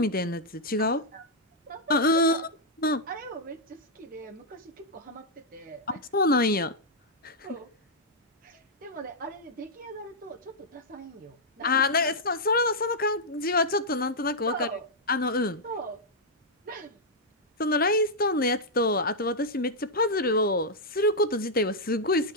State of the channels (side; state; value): both; normal; correlation -0.05